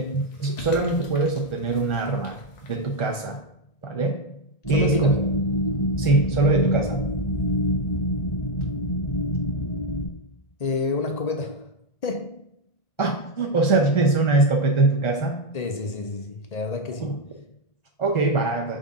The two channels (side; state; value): right; late; 1.4 ms